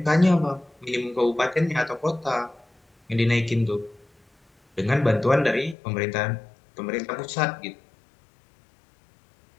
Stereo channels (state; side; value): drops out; right; at 5.8 s